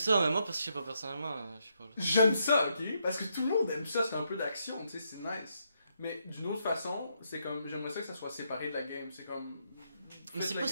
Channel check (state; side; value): inverted; both; correlation -0.78